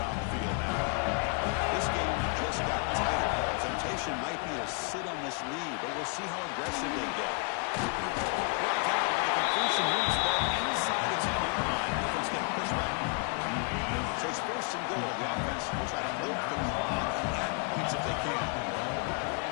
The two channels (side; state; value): right; quieter; 35.9 dB